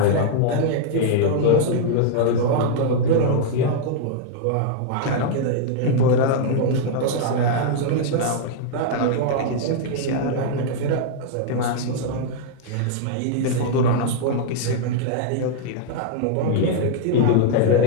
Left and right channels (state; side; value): different; both; correlation -0.01